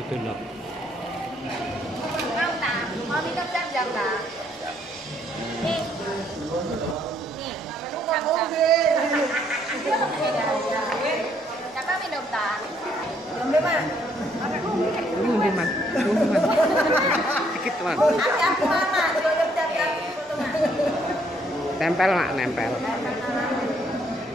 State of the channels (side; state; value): both; normal; correlation 0.68